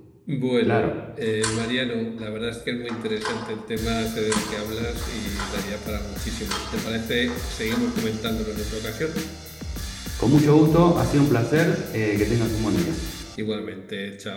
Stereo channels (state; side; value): identical; both; correlation 1.00